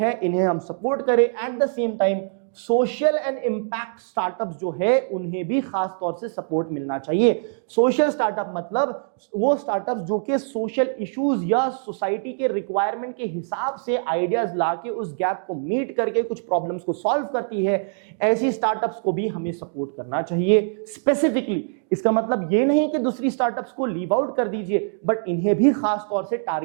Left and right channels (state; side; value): silent; left; 62 dB below the other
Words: इन्हें हम सपोर्ट करें। At the same time social and impact startups जो है उन्हें भी खास तौर से सपोर्ट मिलना चाहिए। सोशल स्टार्टअप मतलब वो स्टार्टअप्स जो कि सोशल इश्यूज या सोसाइटी के रिक्वायरमेंट के हिसाब से आइडियाज लाके उस गैप को मीट करके कुछ प्रॉब्लम्स को सॉल्व करती है, ऐसी स्टार्टअप्स को भी हमें सपोर्ट करना चाहिए स्पेसिफिकली। इसका मतलब ये नहीं कि दूसरी स्टार्टअप्स को लीव आउट कर दीजिए, बट इन्हें भी खास तौर से